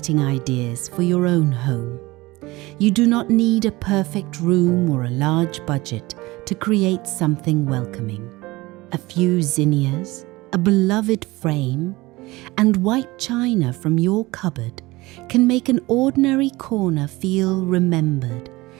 ideas for your own home. You do not need a perfect room or a large budget to create something welcoming. A few zinnias, a beloved frame, and white china from your cupboard can make an ordinary corner feel remembered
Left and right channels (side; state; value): left; quieter; 20.9 dB